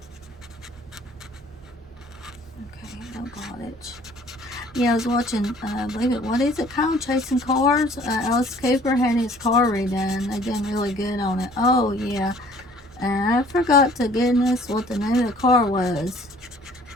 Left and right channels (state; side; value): normal; both; correlation 0.55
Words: much. Yeah, I was watching, I believe it, what is it called? Chasing Cars. Alice Cooper had his car redone. They done really good on it. Oh, yeah. And I forgot to goodness what the name of the car was.